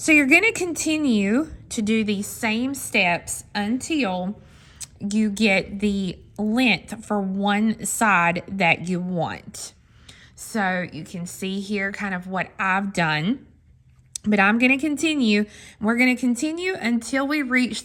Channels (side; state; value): both; identical; correlation 1.00